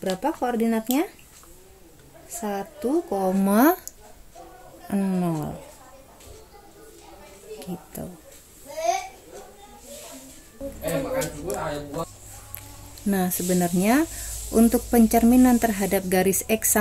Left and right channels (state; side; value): identical; both; correlation 1.00